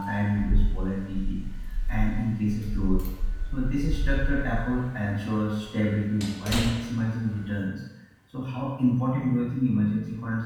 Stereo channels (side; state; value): both; identical; correlation 1.00